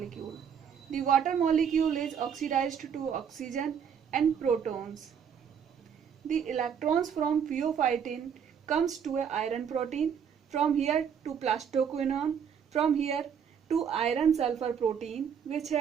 The water molecule is oxidized to oxygen and protons. The electrons from pheophytin comes to a iron protein, from here to plastoquinone, from here to iron sulfur protein, which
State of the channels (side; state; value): left; quieter; 7.6 dB